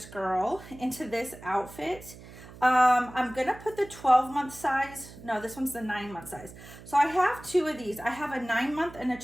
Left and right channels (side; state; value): right; noise; hum, 18 dB below the sound